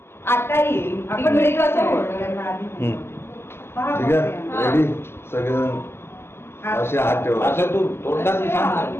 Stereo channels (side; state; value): right; late; 0.12 ms